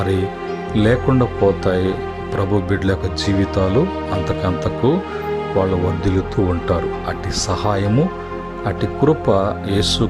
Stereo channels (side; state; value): both; identical; correlation 1.00